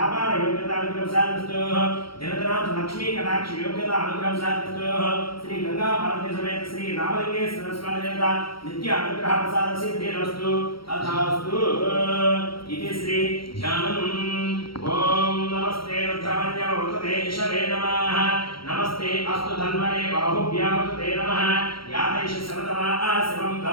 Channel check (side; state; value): right; late; 0.74 ms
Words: दिनदनाथ लक्ष्मी कटाक्ष योग्यता अनुग्रहसादस्तु श्री गंगा पार्वती समेत श्री रामलिंगेश्वर स्वामी देवता नित्य अनुग्रह प्रसाद सिद्धिरस्तु तथास्तु इति श्री ध्यानम् ओम नमस्ते रुद्रमन्यवतते ईश्वरे नमः नमस्ते अस्तु धन्वने बाहुभ्यामते नमः यादैष समतमा शिवं